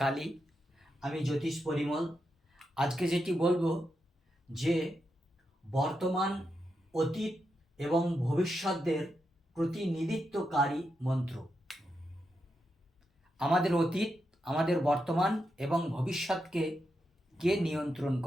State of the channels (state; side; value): normal; both; correlation 0.85